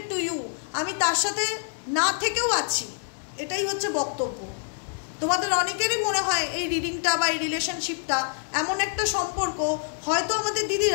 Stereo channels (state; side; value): silent; right; digital silence